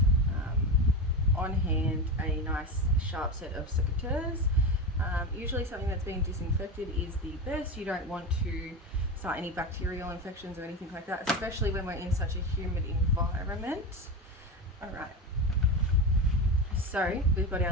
on hand a nice sharp set of secateurs. Usually something that's being disinfected is the best. You don't want to start any bacterial infections or anything like that, especially when we're in such a humid environment. All right, so we've got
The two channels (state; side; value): normal; both; correlation 0.21